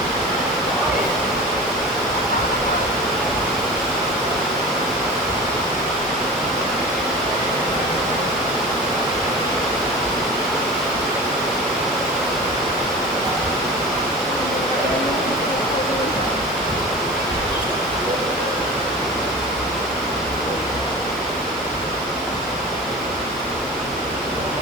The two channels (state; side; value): normal; both; correlation 0.34